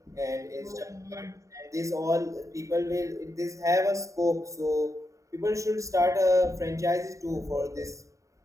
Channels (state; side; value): late; left; 0.15 ms